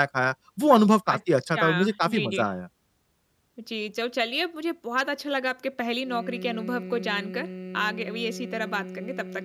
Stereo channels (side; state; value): both; identical; correlation 1.00